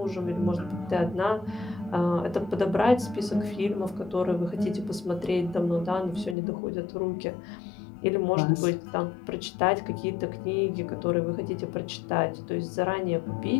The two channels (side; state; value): right; drops out; at 6.4 s